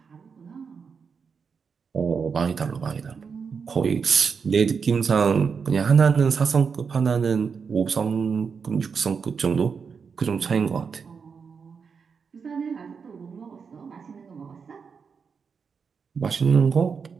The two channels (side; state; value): left; quieter; 5.8 dB